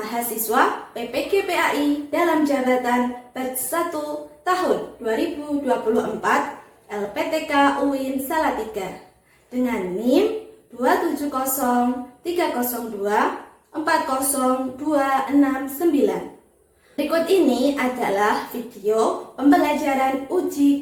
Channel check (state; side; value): identical; both; correlation 1.00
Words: PPG PAI dalam jabatan batch 1 tahun 2024 LPTK UIN Salatiga dengan NIM 27030240269. Berikut ini adalah video pembelajaran uji